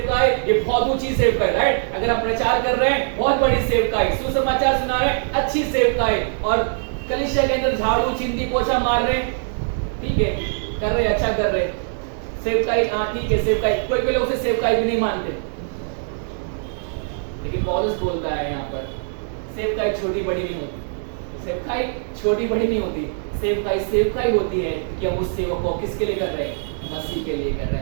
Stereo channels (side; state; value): left; silent; digital silence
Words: ये बहुत ऊंची सेवकाई, राइट? अगर हम प्रचार कर रहे हैं, बहुत बड़ी सेवकाई, सुसमाचार सुना रहे हैं, अच्छी सेवकाई। और कलीसिया के अंदर झाड़ू चिंती पोछा मार रहे हैं, ठीक है, कर रहे, अच्छा कर रहे, सेवकाई, हाँ ठीक है सेवकाई। कोई लोग उसे सेवकाई भी नहीं मानते, लेकिन पौलुस बोलता है यहाँ पर सेवकाई छोटी बड़ी नहीं होती, सेवकाई छोटी बड़ी नहीं होती, सेवकाई होती है कि हम उस सेवा को किसके लिए कर रहे हैं? मसीह के लिए कर रहे